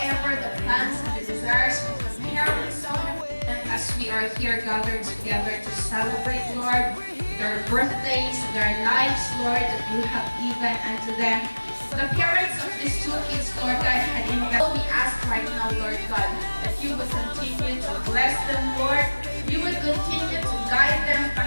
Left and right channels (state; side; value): inverted; both; correlation -1.00